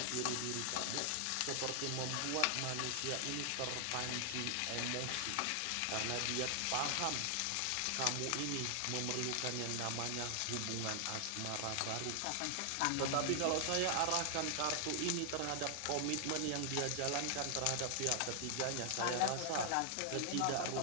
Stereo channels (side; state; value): both; different; correlation 0.00